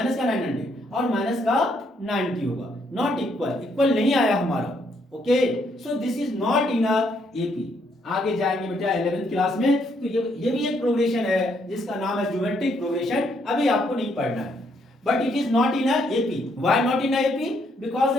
का 900 और माइनस का 90 होगा। नॉट इक्वल, इक्वल नहीं आया हमारा। Okay, so this is not in AP. आगे जाएंगे बेटा 11th क्लास में, तो ये भी एक प्रोग्रेशन है जिसका नाम है ज्योमेट्रिक प्रोग्रेशन। अभी आपको नहीं पढ़ना है, but it is not in AP. Why not in AP? Because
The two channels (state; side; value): normal; both; correlation 0.72